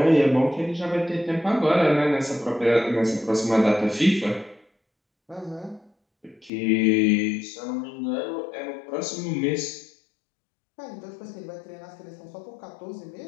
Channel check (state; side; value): drops out; right; at 6.5 s